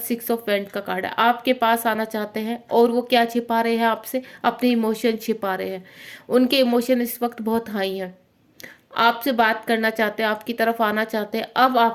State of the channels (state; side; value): identical; both; correlation 1.00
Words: ऑफ वेंट का कार्ड है। आपके पास आना चाहते हैं और वो क्या छिपा रहे हैं आपसे, अपने इमोशन छिपा रहे हैं। उनके इमोशन इस वक्त बहुत हाई हैं, आपसे बात करना चाहते हैं, आपकी तरफ आना चाहते हैं। अब